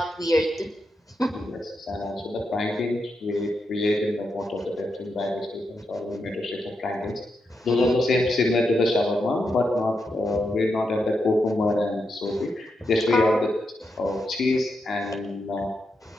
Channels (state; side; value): normal; both; correlation 0.84